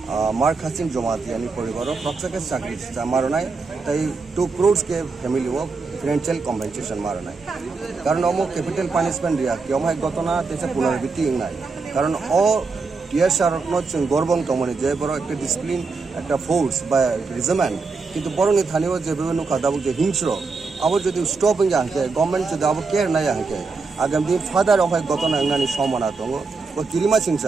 মার্ক হাসিন জমাতিয়ানি পরিবার প্রত্যেকে চাকরি মারনাই তাই 2 crores के ফ্যামিলি ও ফিনান্সিয়াল কম্পেনসেশন মারনাই কারণ অমো ক্যাপিটাল পানিশমেন্ট রিয়া কি অমহাই ঘটনা তেছে পুনরাবৃত্তি নাই কারণ ও টিএসআর जों গর্বং তমনি যে বড় একটা ডিসিপ্লিন একটা ফোর্স বা রেজিমেন্ট কিন্তু বরংনি থানিও যে বিভিন্ন খাদাবু যে হিংস্র আবার যদি স্টপ হয়ে যাকে গভর্নমেন্ট যদি আবার কেয়ার নাই যাকে আগামী দিন ফাদার অমহাই ঘটনা নানি সম্মানা দङ ও কিরিমা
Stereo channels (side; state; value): left; quieter; 4.3 dB